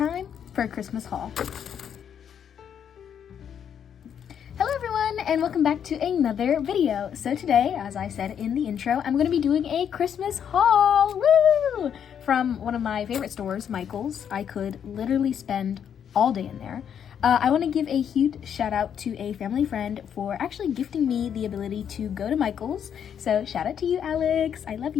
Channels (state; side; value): quieter; right; 8.5 dB